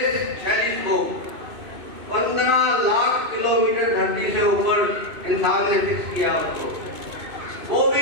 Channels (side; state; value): left; late; 2.6 ms